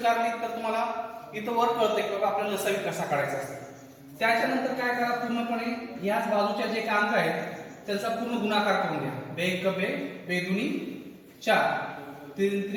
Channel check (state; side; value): identical; both; correlation 1.00